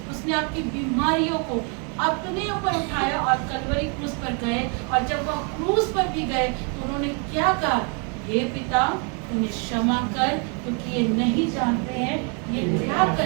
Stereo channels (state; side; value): quieter; left; 37.5 dB